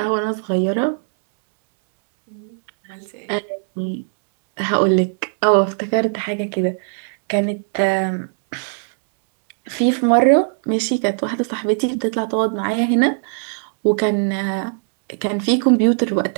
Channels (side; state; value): left; silent; 66 dB below the other